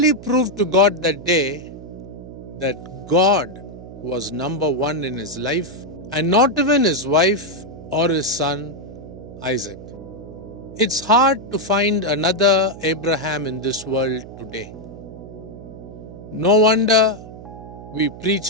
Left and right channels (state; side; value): noise; right; hum, 14 dB below the sound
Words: proved to God that day that God was number one in his life, and not even his wife or his son Isaac. It's hard to find another Abraham in this world today. No wonder we